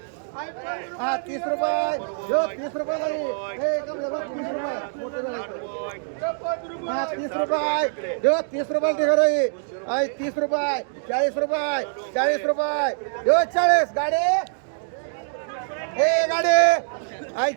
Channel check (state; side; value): silent; left; digital silence